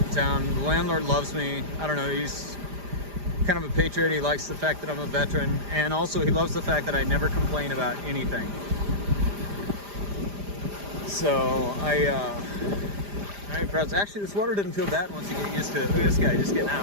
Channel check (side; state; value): left; late; 5.0 ms